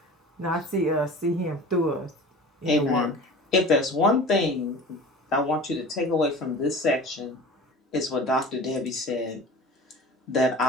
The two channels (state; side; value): normal; both; correlation 0.38